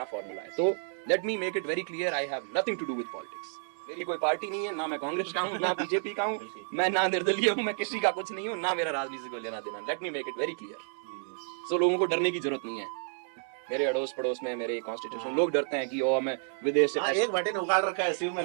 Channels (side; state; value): left; silent; digital silence